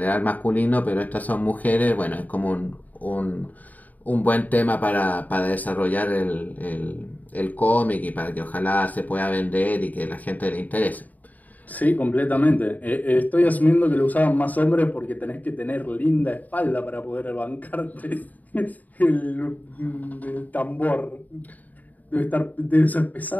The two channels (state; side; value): late; right; 0.078 ms